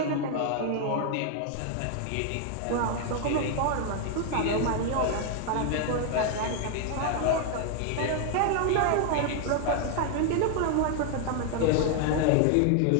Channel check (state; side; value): different; both; correlation 0.00